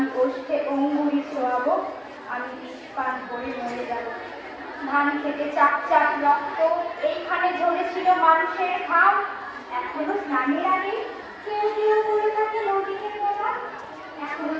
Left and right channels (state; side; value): identical; both; correlation 1.00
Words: ওষ্ঠে অঙ্গুরি ছোঁয়াবো, আমি বিষ পান করে মরে যাব। ধান খেতে চাপ চাপ রক্ত, এইখানে ঝরেছিল মানুষের ঘাম, এখনো স্নানের আগে কেউ কেউ করে থাকে নদীকে মোড়া, এখনো